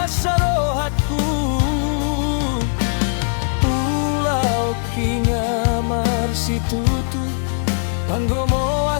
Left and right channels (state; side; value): silent; right; digital silence